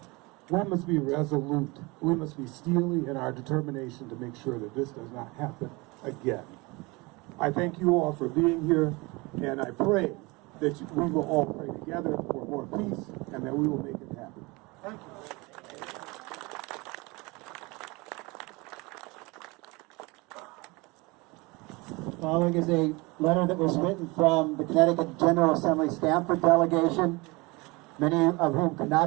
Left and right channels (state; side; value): quieter; left; 25.2 dB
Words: We must be resolute. We must be steely in our determination to make sure that this does not happen again. I thank you all for being here, and I pray that we will all pray together for more peace and that we will make it happen. Thank you. Following is a letter that was written from the Connecticut General Assembly Stamford delegation, many of whom could